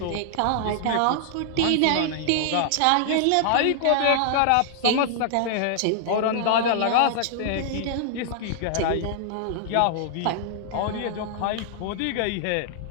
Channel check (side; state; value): both; different; correlation -0.01